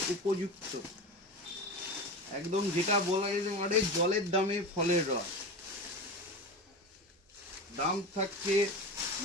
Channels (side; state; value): both; normal; correlation 0.26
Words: উপযুক্ত, একদম যেটা বলা যেতে পারে জলের দামে ফলের রস। দাম থাকছে